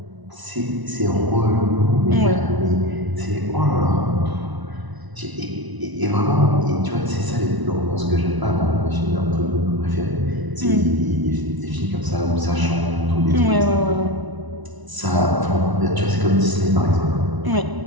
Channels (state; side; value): late; left; 1.0 ms